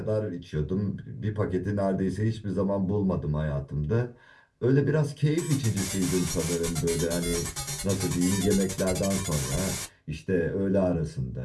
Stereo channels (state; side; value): identical; both; correlation 1.00